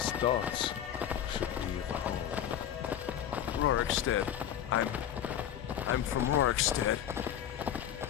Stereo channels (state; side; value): quieter; right; 10.2 dB